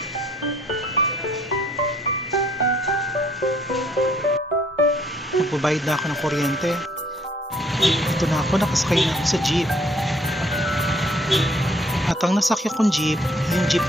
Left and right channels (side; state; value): both; normal; correlation 0.63